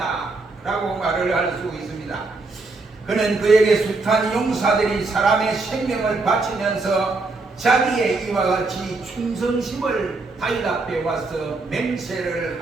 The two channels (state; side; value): quieter; left; 3.5 dB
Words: 라고 말을 할 수 있습니다. 그는 그에게 숱한 용사들이 사람의 생명을 바치면서 자기의 이와 같이 충성심을 다윗 앞에 와서 맹세를